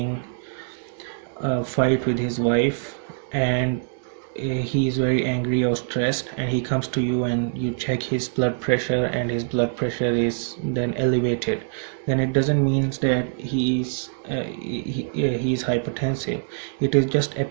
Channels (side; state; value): left; silent; digital silence